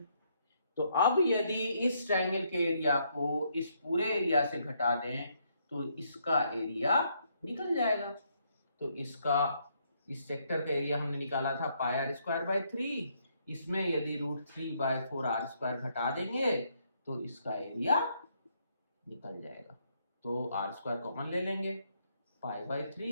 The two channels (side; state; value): both; inverted; correlation -0.73